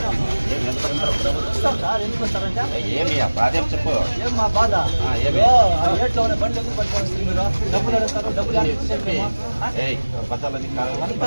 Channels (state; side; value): inverted; both; correlation -1.00